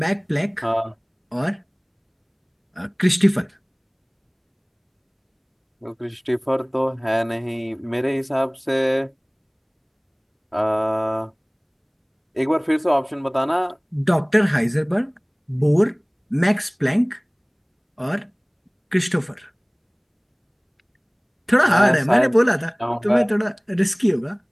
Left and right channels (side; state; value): both; identical; correlation 1.00